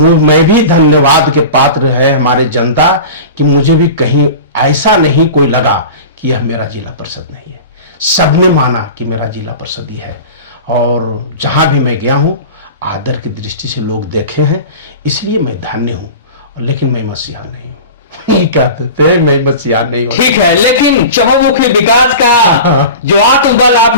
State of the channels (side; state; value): both; inverted; correlation -0.34